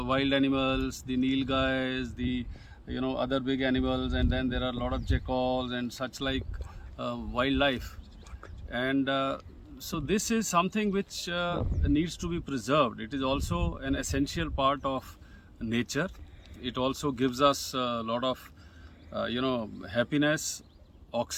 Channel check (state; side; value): identical; both; correlation 1.00